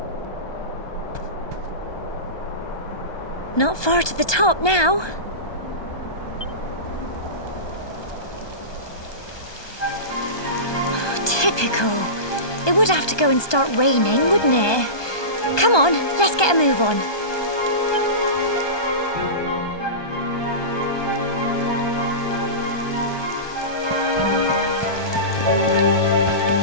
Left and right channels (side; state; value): right; late; 1.2 ms